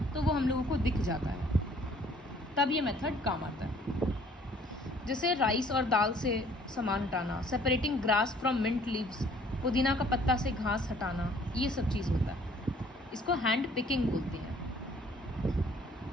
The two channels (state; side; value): normal; both; correlation 0.57